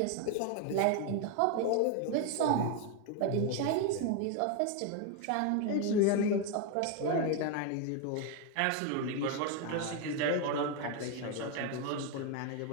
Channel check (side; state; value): both; different; correlation 0.01